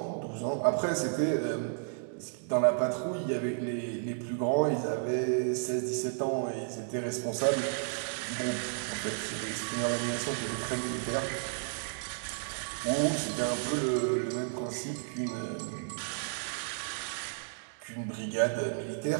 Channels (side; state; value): left; silent; digital silence